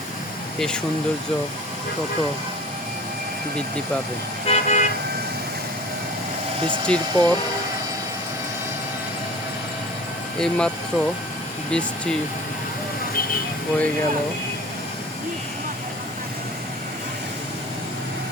এই সৌন্দর্য তত বৃদ্ধি পাবে। বৃষ্টির পর এইমাত্র বৃষ্টি হয়ে গেল,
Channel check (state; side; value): normal; both; correlation 0.43